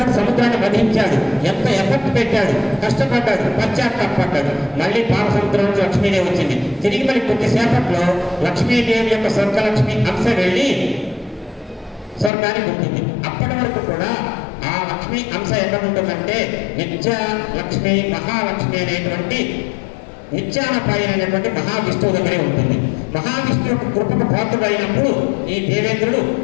సముద్రాన్ని వధించాడు. ఎంత ఎఫర్ట్ పెట్టాడు, కష్టపడ్డాడు, పశ్చాత్తాపడ్డాడు. మళ్ళీ పాలసముద్రం నుంచి లక్ష్మీదేవి వచ్చింది. తిరిగి మళ్ళీ కొద్దిసేపట్లో లక్ష్మీదేవి యొక్క స్వర్గలక్ష్మి అంశ వెళ్ళి స్వర్గానికి ఉంటుంది. అప్పటి వరకు కూడా ఆ లక్ష్మి అంశ ఎక్కడ ఉంటుందంటే నిత్య లక్ష్మి, మహాలక్ష్మి అనేటువంటి నిత్యానపాయనటువంటి మహావిష్ణువు దగ్గరే ఉంటుంది. మహావిష్ణువు యొక్క కృపకు పాత్రుడైనప్పుడు ఈ దేవేంద్రుడు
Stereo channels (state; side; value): drops out; right; at 12.3 s